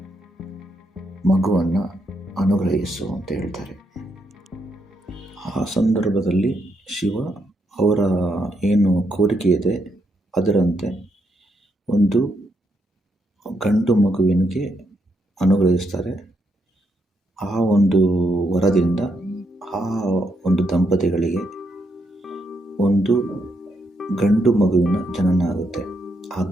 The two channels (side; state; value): both; normal; correlation 0.79